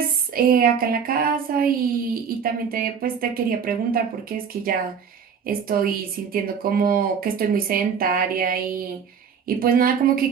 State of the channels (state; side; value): quieter; left; 6.9 dB